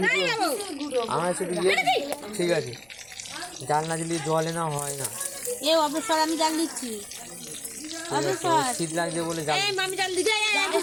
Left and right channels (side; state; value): right; noise; rumble, 29 dB below the sound